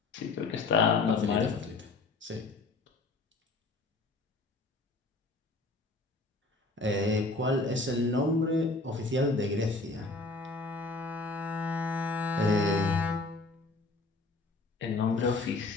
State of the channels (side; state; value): right; quieter; 3.3 dB